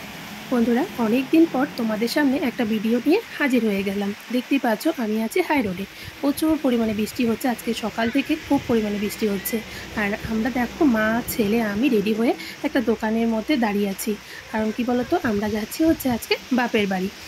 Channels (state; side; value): identical; both; correlation 1.00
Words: বন্ধুরা, অনেক দিন পর তোমাদের সামনে একটা ভিডিও নিয়ে হাজির হয়ে গেলাম। দেখতেই পাচ্ছ আমি আছি হাই রোডে। প্রচুর পরিমাণে বৃষ্টি হচ্ছে, আজকে সকাল থেকে খুব পরিমাণে বৃষ্টি হচ্ছে। আর আমরা দেখো মা, ছেলে, আমি রেডি হয়ে একটা দোকানের মধ্যে দাঁড়িয়ে আছি। কারণ কি বলতো, আমরা যাচ্ছি হচ্ছে আজকে বাপের বাড়ি।